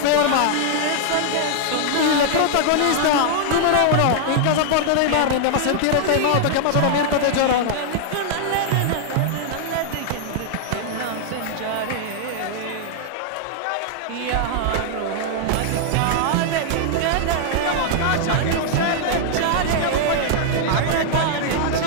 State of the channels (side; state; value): both; different; correlation -0.01